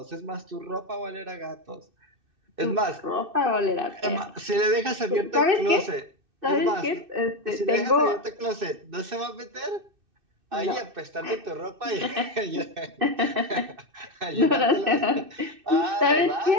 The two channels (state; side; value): late; left; 2.6 ms